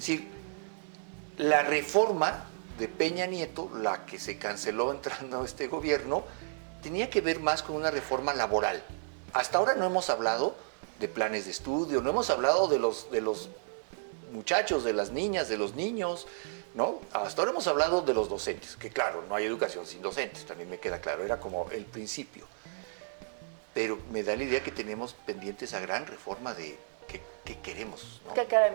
la reforma de Peña Nieto, la que se canceló entrando a este gobierno, tenía que ver más con una reforma laboral. Hasta ahora no hemos hablado de planes de estudio, no hemos hablado de los muchachos, de las niñas, de los niños, ¿no? Hasta ahora hemos hablado de los docentes, que claro, no hay educación sin docentes, también me queda claro, era como el principio. Pero me da la idea que tenemos pendiente esa gran reforma de qué queremos, ¿no? ¿Qué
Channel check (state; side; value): silent; left; digital silence